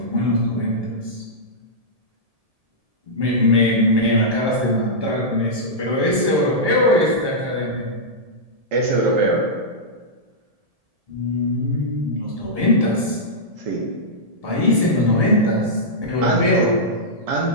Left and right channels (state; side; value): late; left; 1.7 ms